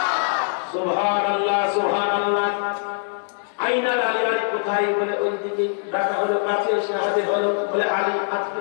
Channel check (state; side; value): silent; right; digital silence